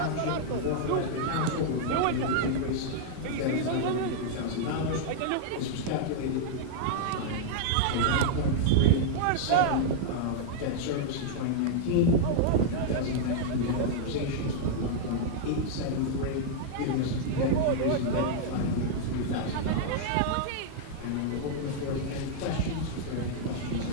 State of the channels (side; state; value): both; different; correlation -0.01